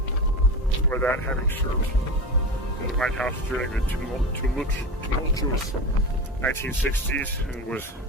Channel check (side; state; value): both; normal; correlation 0.25